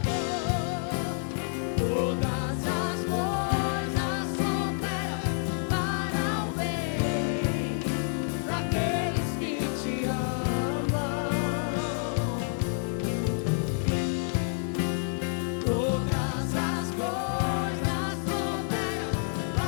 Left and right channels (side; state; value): right; silent; digital silence